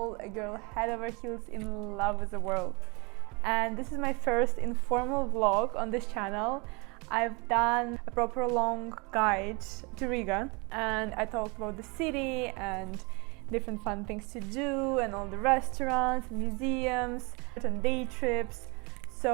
a girl head over heels in love with the world. And this is my first informal vlog on this channel. I've done a proper long guide to Riga, and I talked about the city and different fun things to do and all the restaurants, museums, and day trips.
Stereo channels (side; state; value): left; quieter; 29.3 dB